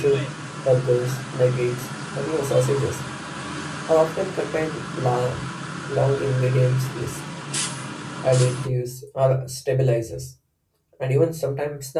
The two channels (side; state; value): both; identical; correlation 1.00